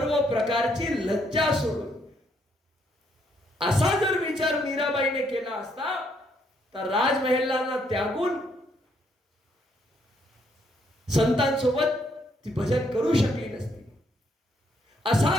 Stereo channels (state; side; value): normal; both; correlation 0.72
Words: प्रकारची लज्जा सोडून. असा जर विचार मीराबाईने केला असता तर राजमहेलांना त्यागून संतांसोबत ती भजन करू शकली नसती.